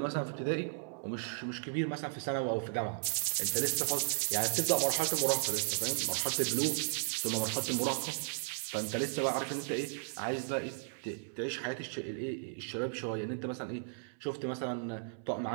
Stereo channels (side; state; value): left; silent; 54 dB below the other